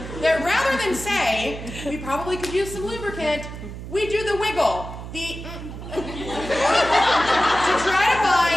that rather than say, we probably could use some lubricant, we do the wiggle, to try to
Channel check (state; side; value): noise; right; hum, 10 dB below the sound